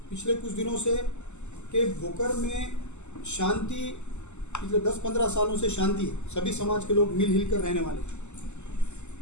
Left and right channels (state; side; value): late; right; 0.83 ms